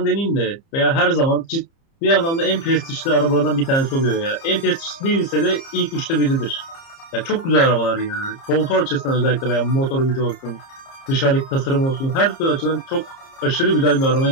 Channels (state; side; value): late; right; 30 ms